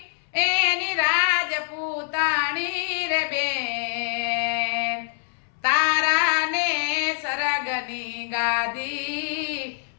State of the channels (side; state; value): right; silent; 61 dB below the other